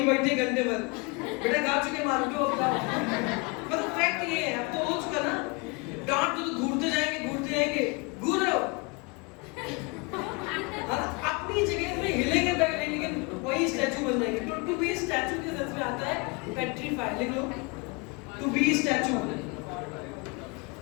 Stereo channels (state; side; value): quieter; right; 29.0 dB